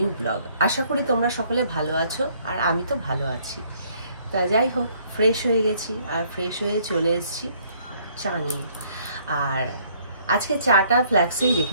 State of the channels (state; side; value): inverted; both; correlation -0.63